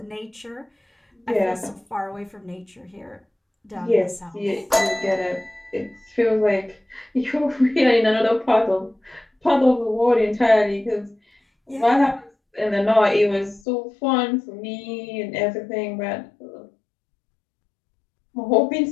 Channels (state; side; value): drops out; right; at 13.6 s